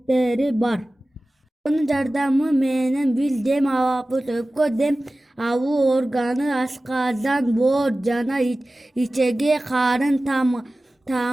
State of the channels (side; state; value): both; normal; correlation 0.96